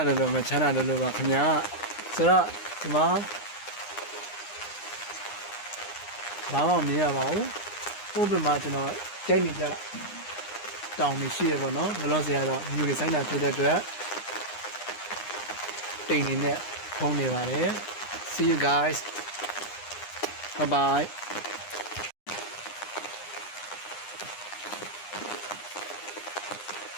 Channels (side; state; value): right; late; 9.8 ms